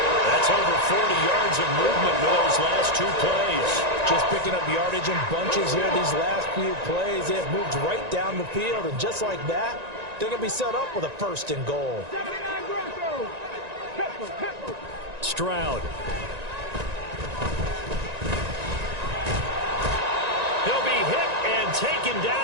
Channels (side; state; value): left; late; 1.9 ms